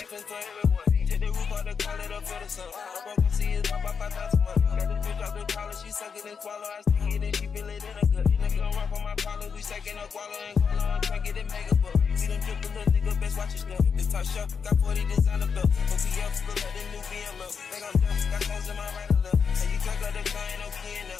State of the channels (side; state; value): right; quieter; 6.1 dB